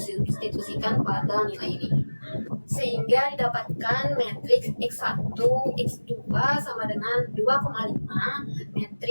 pada nilai ini, sehingga didapatkan matriks X1, X2 sama dengan 2,5,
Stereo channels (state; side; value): inverted; both; correlation -1.00